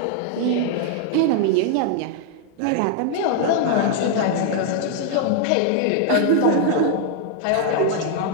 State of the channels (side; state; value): both; different; correlation 0.00